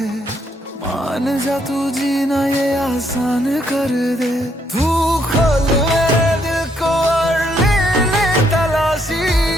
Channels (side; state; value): both; normal; correlation 0.73